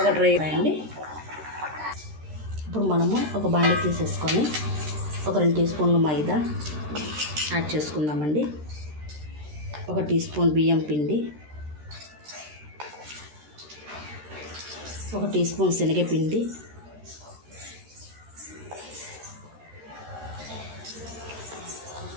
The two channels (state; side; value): late; left; 13 ms